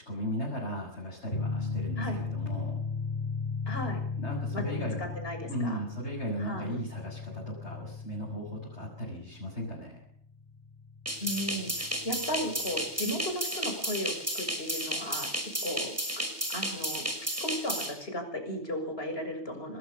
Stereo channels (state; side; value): normal; both; correlation 0.00